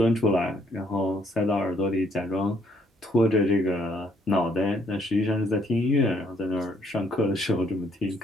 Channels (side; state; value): both; normal; correlation 0.68